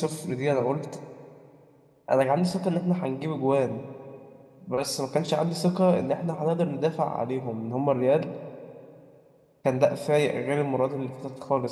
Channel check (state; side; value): identical; both; correlation 1.00